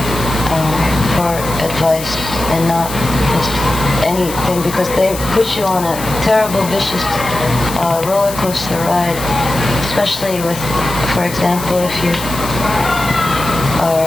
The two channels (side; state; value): left; noise; hiss, 11 dB below the sound